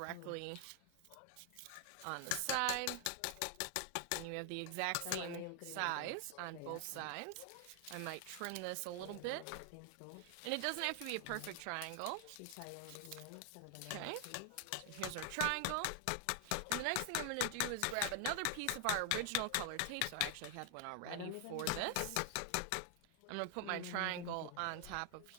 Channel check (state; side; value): different; both; correlation 0.00